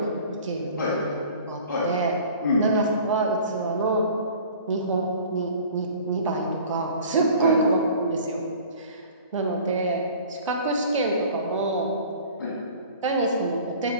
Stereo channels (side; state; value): both; inverted; correlation -0.46